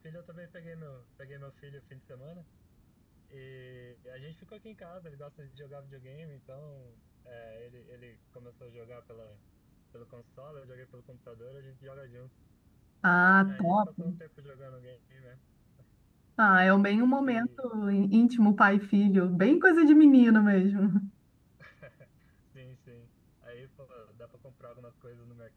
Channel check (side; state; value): both; identical; correlation 1.00